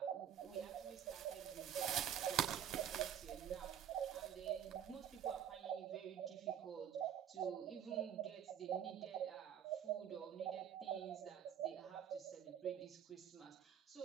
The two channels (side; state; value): left; quieter; 9.3 dB